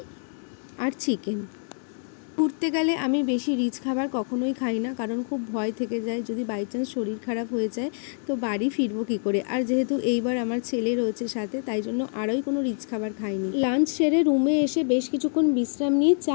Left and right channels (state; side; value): silent; right; 61 dB below the other